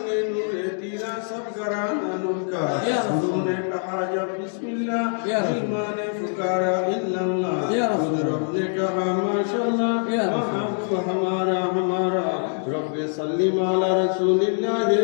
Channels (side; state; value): right; silent; 59 dB below the other